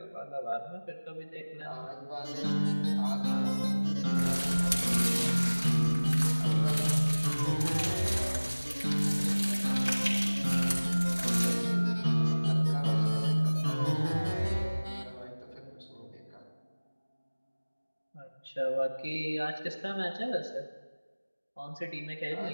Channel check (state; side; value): inverted; both; correlation -1.00